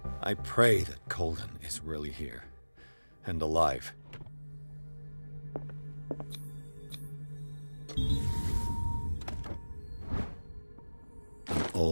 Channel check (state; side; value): inverted; both; correlation -1.00